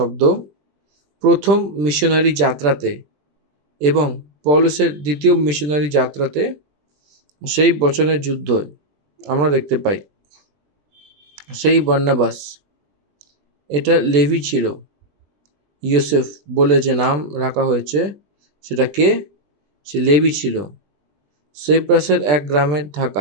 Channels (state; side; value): late; left; 20 ms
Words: প্রথম মিশনারি যাত্রাতে এবং পৌলুসের দ্বিতীয় মিশনারি যাত্রাতে সেই বচনের যুদ্ধ আমরা দেখতে পাই। সেই বর্ণবাস এটা লেভি ছিল। ইউসুফ বলে যে নাম রাখা হয়েছে সেটা কে? সে লেভি ছিল, সাইপ্রাসের এক গ্রামে